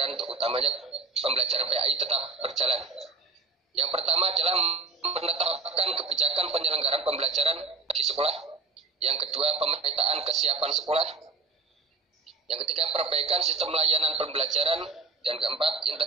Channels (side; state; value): left; quieter; 4.1 dB